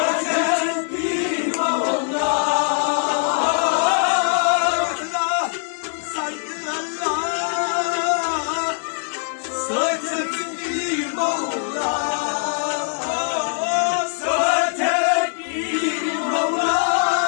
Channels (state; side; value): silent; right; 61 dB below the other